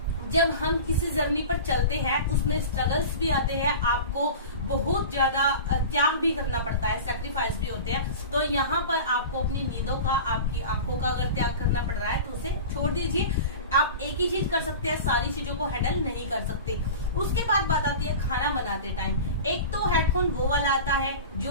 जब हम किसी जर्नी पर चलते हैं, उसमें स्ट्रगल्स भी आते हैं, आपको बहुत ज्यादा त्याग भी करना पड़ता है, सेक्रीफाइस भी होते हैं। तो यहाँ पर आपको अपनी नींदों का, आपकी आंखों का अगर त्याग करना पड़ रहा है, तो उसे छोड़ दीजिए। आप एक ही चीज कर सकते हैं, सारी चीजों को हैंडल नहीं कर सकते। उसके बाद बात आती है खाना बनाते टाइम। एक तो हेडफोन वो वाला आता है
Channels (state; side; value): inverted; both; correlation -0.33